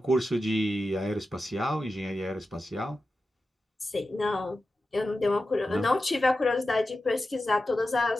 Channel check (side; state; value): both; normal; correlation 0.92